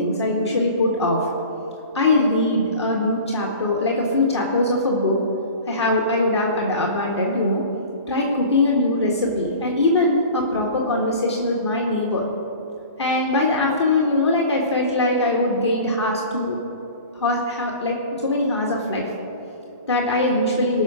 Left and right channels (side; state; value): both; inverted; correlation -0.39